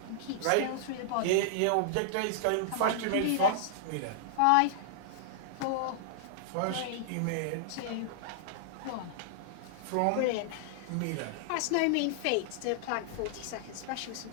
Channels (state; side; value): different; both; correlation -0.01